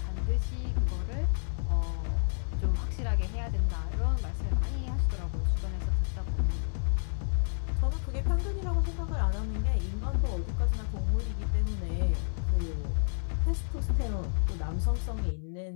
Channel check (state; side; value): silent; right; 58 dB below the other